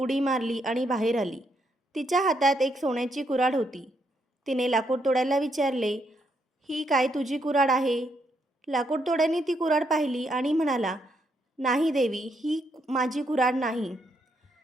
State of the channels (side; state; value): both; normal; correlation 0.76